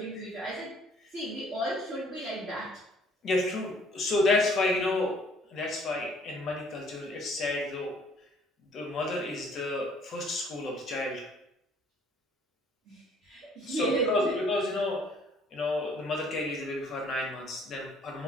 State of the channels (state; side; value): normal; both; correlation 0.59